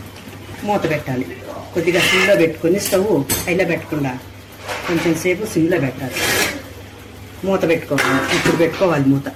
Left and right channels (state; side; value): identical; both; correlation 1.00